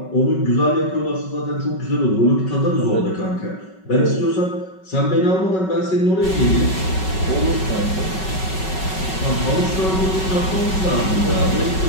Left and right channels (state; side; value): late; right; 5.3 ms